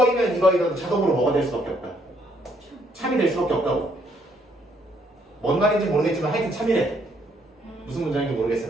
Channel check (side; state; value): both; normal; correlation 0.69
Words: 이거이면 자동으로 뭐가 될 수밖에 없다. 참이 될 수밖에 없다고. 뭔 말인지 모르겠지만 하여튼 참이래. 무슨 문장인지